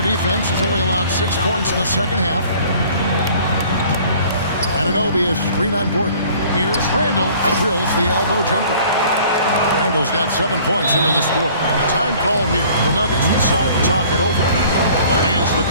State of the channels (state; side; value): inverted; both; correlation -0.52